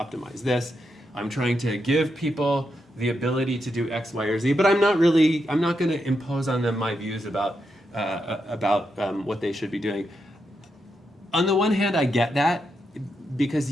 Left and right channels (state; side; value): normal; both; correlation 0.84